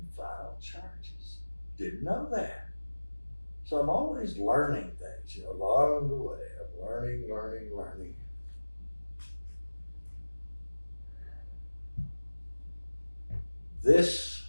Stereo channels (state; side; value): inverted; both; correlation -1.00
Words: file charges. Didn't know that. So I'm always learning things, along the way. I'm learning. This